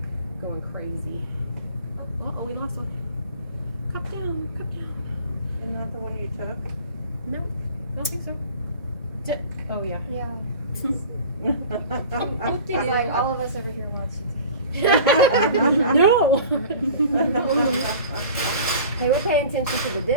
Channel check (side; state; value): both; inverted; correlation -0.41